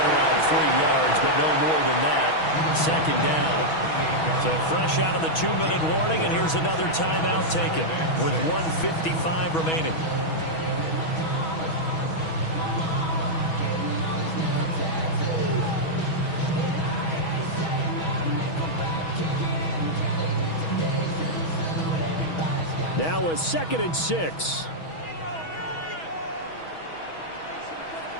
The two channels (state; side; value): late; right; 6.2 ms